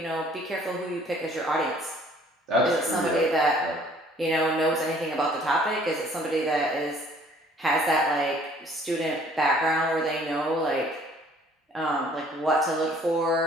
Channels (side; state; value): both; normal; correlation 0.57